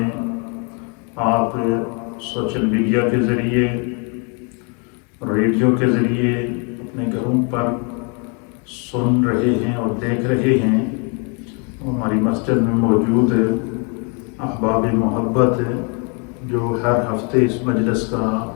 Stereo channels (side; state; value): right; quieter; 36.0 dB